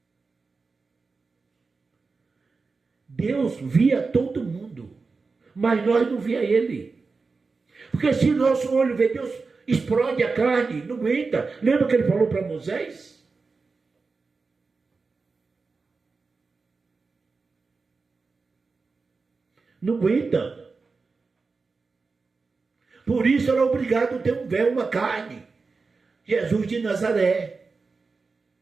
Deus via todo mundo, mas nós não via ele. Porque se nosso olho vê Deus, explode a carne, não aguenta. Lembra que ele falou para Moisés? Não aguenta. Por isso era obrigado a ter um véu, uma carne. Jesus de Nazaré.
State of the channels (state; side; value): quieter; left; 4.3 dB